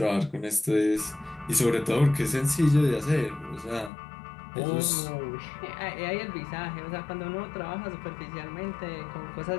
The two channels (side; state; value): right; drops out; at 3.9 s